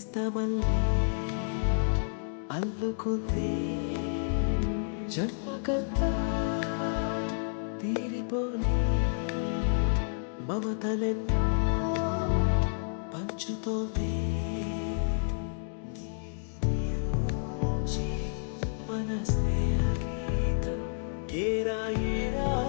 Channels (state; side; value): silent; right; digital silence